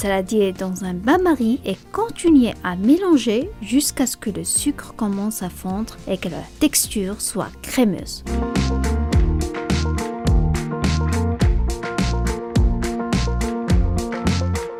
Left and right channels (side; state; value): both; identical; correlation 1.00